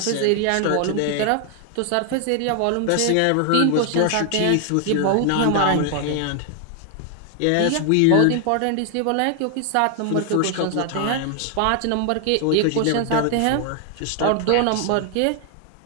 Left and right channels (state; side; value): different; both; correlation 0.00